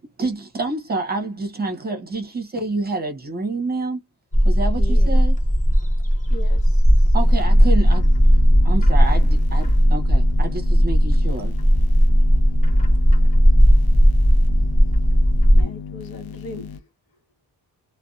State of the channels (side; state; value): both; normal; correlation 0.96